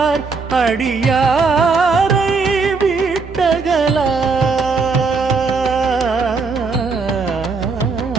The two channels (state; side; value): quieter; left; 4.5 dB